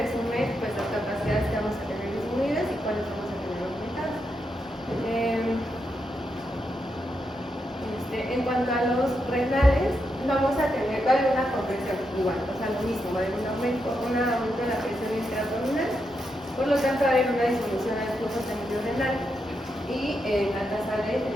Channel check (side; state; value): both; normal; correlation 0.84